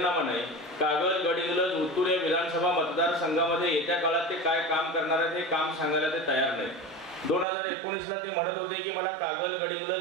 नाही। कागल, गडिंग्लज, उत्तूर या विधानसभा मतदारसंघामध्ये येत्या काळात ते काय काम करणार आहेत हे काम सांगायला ते तयार नाहीत। 2019ला ते म्हणत होते की मला कागल,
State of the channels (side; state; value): left; drops out; at 7.5 s